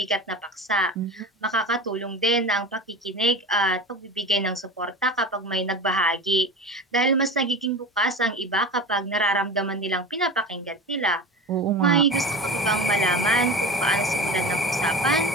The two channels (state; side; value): normal; both; correlation 0.31